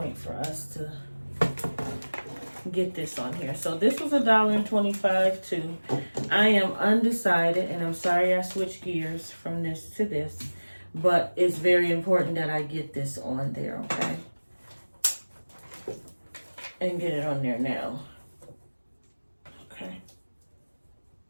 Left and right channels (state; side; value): inverted; both; correlation -1.00